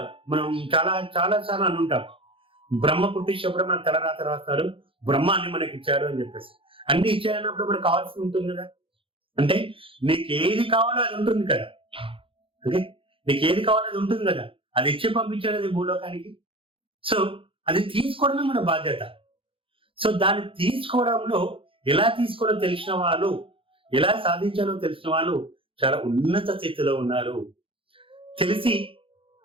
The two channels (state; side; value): late; left; 0.26 ms